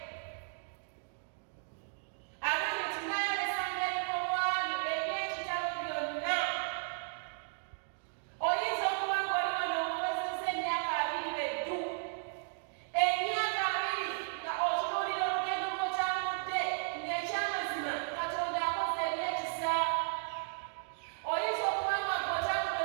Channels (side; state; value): left; silent; digital silence